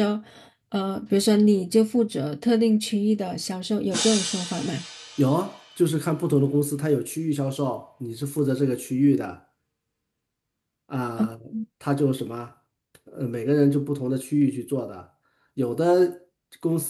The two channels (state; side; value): identical; both; correlation 1.00